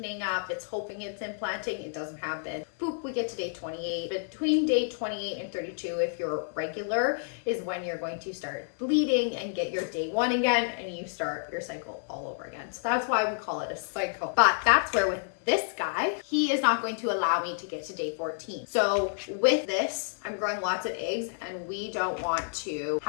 up, it's hoping it's implanting, it doesn't happen. Boop, we get to day 28. Between day 28 and 32, if you're regular, is when you're going to start bleeding and get your day 1 again, and you start your cycle all over again. So that's why we call it a cycle. But that's where with this guy, he is not going to allow me to get to day 14. So with this, I'm growing lots of eggs, and we don't want to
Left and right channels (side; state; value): right; silent; digital silence